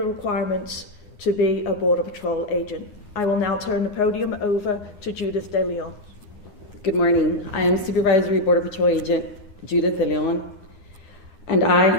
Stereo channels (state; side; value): late; right; 9.7 ms